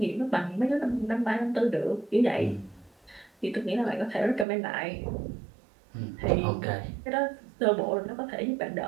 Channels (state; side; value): drops out; left; at 4.5 s